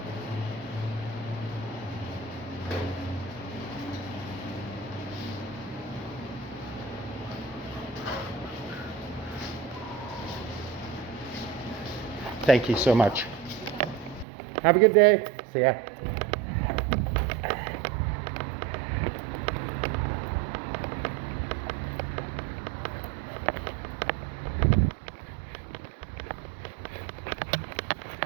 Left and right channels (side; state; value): left; drops out; at 14.2 s